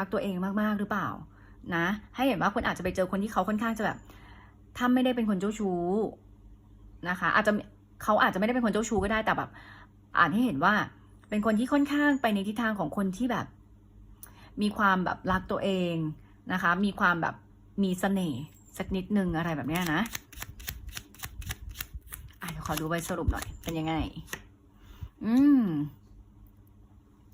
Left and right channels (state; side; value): identical; both; correlation 1.00